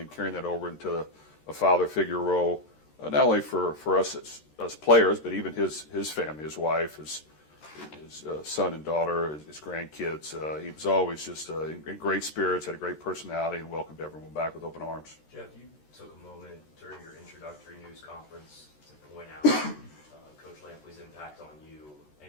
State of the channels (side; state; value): right; late; 13 ms